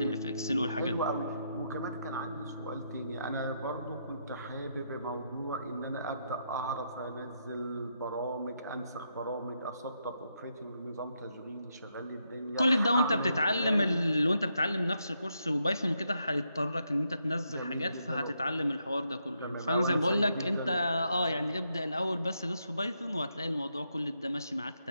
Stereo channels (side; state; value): both; inverted; correlation -0.79